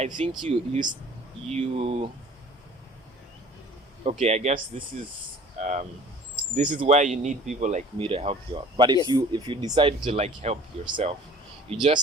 think you okay, I guess this is where you need people like me to help you out. But if you decide to like help yourself, you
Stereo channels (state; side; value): normal; both; correlation 0.49